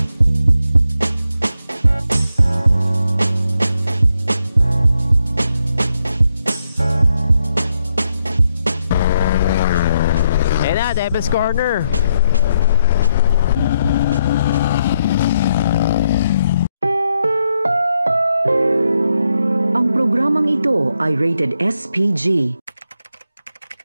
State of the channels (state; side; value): inverted; both; correlation -0.80